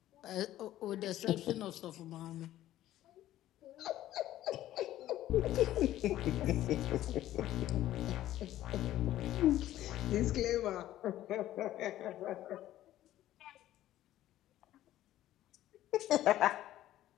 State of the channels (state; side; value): quieter; right; 13.7 dB